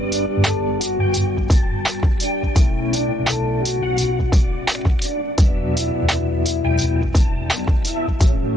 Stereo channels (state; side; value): normal; both; correlation 0.77